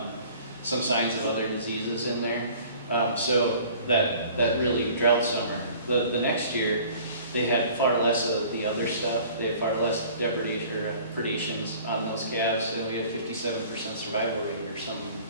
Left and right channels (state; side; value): inverted; both; correlation -0.49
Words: some signs of other diseases in there, so that really drought summer. The next year, they had far less of the other stuff. They had far less predations on those calves, and we had 57% survival rate or some